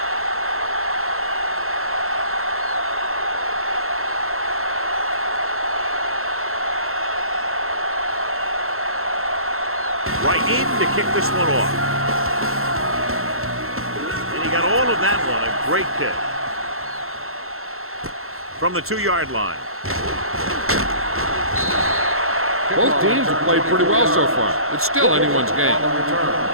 Right in to kick this one off. And he got all of that one. A great kick. From the 2-yard line. Both teams have played pretty well so far. It's still anyone's game.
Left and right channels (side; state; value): left; late; 0.62 ms